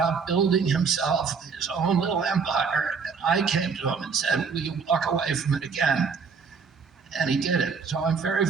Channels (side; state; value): left; quieter; 5.5 dB